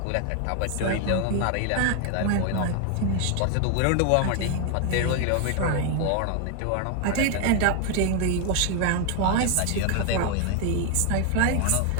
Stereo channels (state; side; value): different; both; correlation 0.00